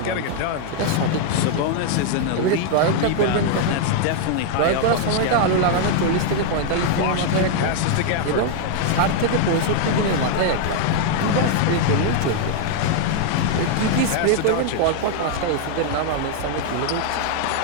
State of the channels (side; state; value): both; different; correlation 0.00